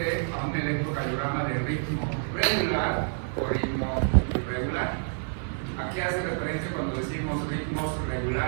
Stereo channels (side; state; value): left; silent; 59 dB below the other